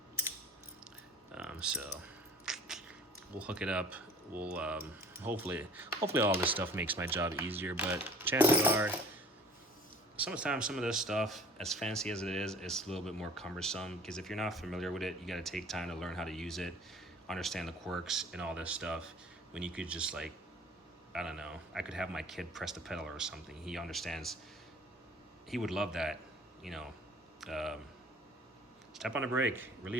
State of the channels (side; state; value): both; normal; correlation 0.48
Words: So we'll hook it up. We'll hopefully all this stuff makes my job easier, but chances are sometimes some of this stuff, as fancy as it is, it's a little bit more cumbersome, because if you're not familiar with it, you got to take time to learn how to use it, understand the quirks and all this stuff, when you could just, like, I don't know, I could have my kid press the pedal or something. He understands, he would love that, you know. Step on the brake,